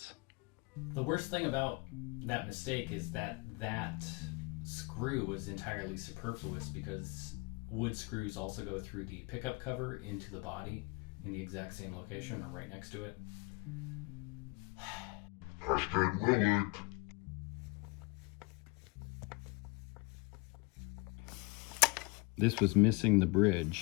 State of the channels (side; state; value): right; quieter; 26.9 dB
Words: The worst thing about that mistake is that screw was entirely superfluous, because wood screws also go through the pickup cover into the body, in the exact same location or right next to it. Hashtag will it. This was missing the